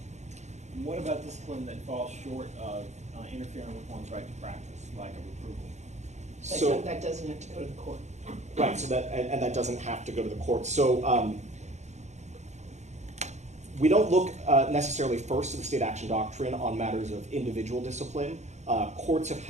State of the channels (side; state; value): left; late; 0.33 ms